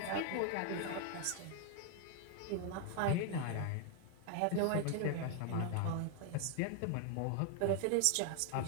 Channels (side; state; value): both; different; correlation 0.00